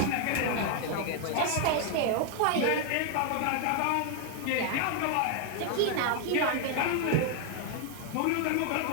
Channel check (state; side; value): different; both; correlation 0.00